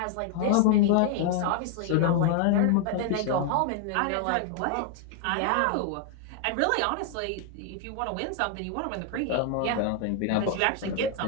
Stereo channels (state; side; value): different; both; correlation 0.00